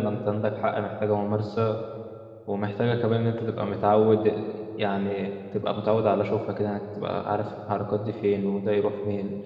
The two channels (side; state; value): both; identical; correlation 1.00